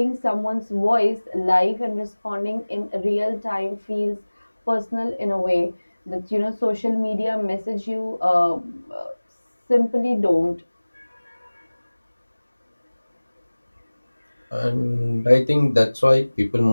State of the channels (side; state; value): both; inverted; correlation -1.00